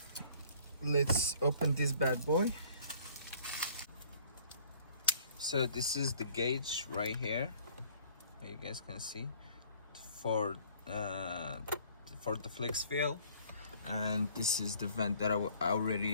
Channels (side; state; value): both; inverted; correlation -0.56